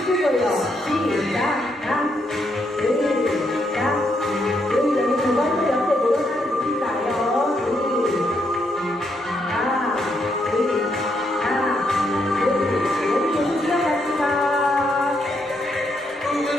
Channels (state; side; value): normal; both; correlation 0.77